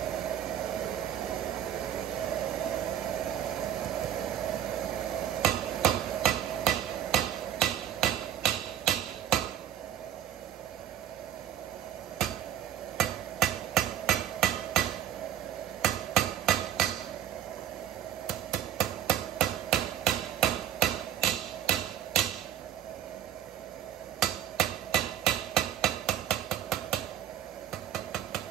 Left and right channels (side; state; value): left; quieter; 10.6 dB